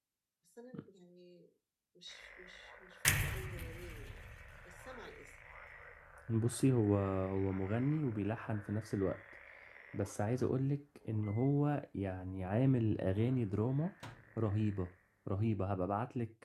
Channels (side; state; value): both; identical; correlation 1.00